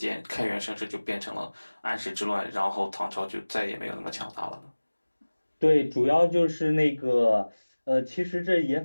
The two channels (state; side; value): inverted; both; correlation -1.00